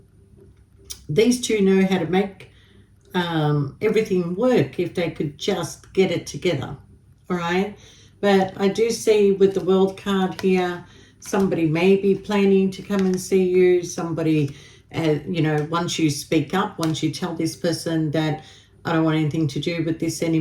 these two know how to make everything work if they could just get it together, all right? But I do see with the World card here, somebody may be planning to come and see you. Somebody, you know, once you speak up, once you tell this person that I don't want anything to do with this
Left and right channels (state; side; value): identical; both; correlation 1.00